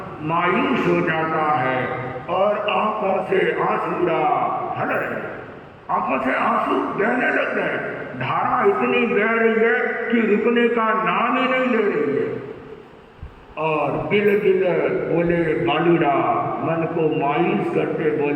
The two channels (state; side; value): identical; both; correlation 1.00